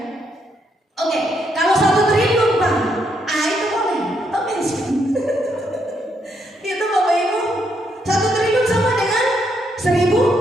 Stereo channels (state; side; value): normal; both; correlation 0.76